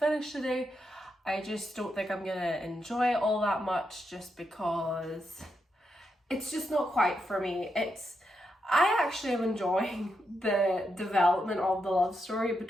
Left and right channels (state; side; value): normal; both; correlation 0.83